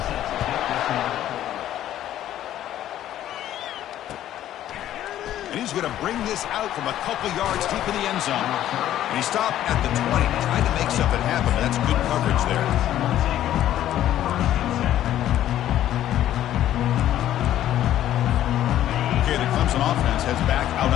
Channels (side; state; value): right; quieter; 12.3 dB